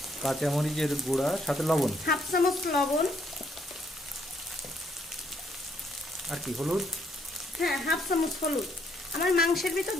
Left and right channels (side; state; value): both; normal; correlation 0.70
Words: কাঁচামরিচের গুঁড়া, সাথে লবণ, হাফ চামচ লবণ, আর কি হলুদ, হ্যাঁ হাফ চামচ হলুদ। আমার মাংসের ভিতর